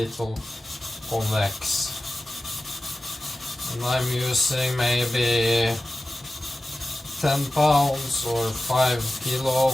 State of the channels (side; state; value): both; normal; correlation 0.94